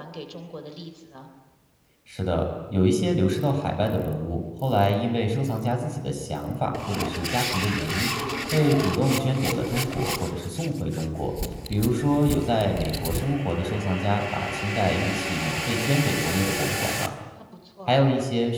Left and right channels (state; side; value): identical; both; correlation 1.00